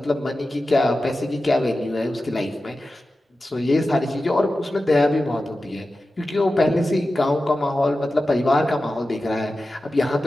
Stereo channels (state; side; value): normal; both; correlation 0.94